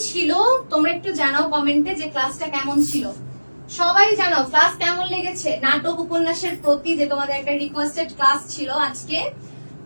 ছিল তোমরা একটু জানাও কমেন্টে যে ক্লাসটা কেমন ছিল। সবাই জানাও ক্লাস কেমন লেগেছে। নাটক, উপন্যাসের প্রতি যে তোমাদের একটা রিকোয়েস্টেড ক্লাস ছিল আজকে,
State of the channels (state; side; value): inverted; both; correlation -1.00